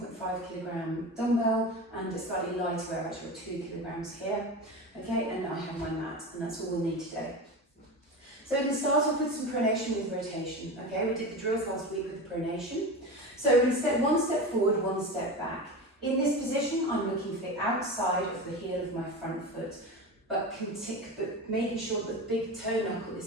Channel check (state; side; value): normal; both; correlation 0.26